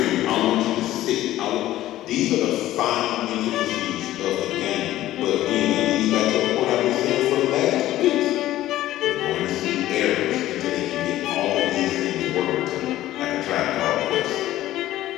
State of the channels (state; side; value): quieter; right; 14.6 dB